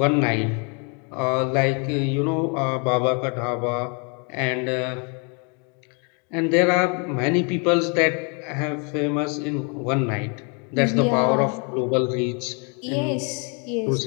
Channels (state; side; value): quieter; right; 35.7 dB